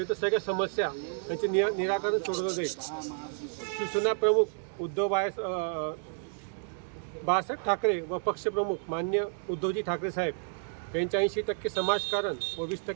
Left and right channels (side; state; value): left; silent; 57 dB below the other